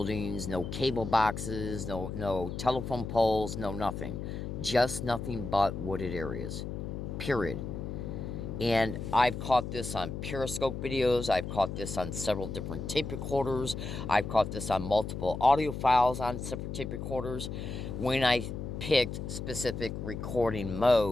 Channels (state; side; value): noise; left; hum, 6 dB below the sound